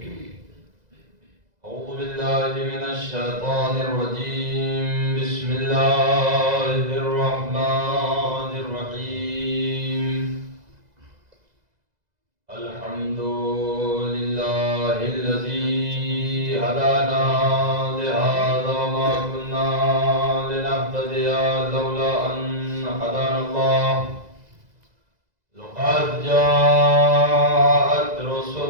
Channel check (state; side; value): late; left; 2.0 ms